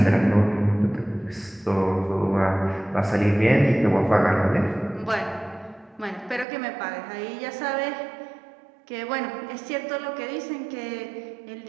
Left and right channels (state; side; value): drops out; left; at 6.5 s